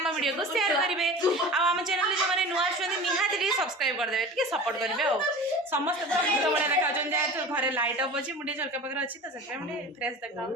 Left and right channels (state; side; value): normal; both; correlation 0.36